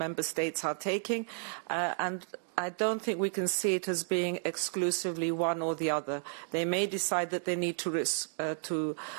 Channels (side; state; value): left; silent; digital silence